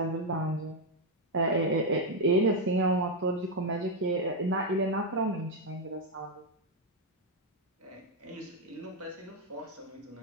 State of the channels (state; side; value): normal; both; correlation 0.02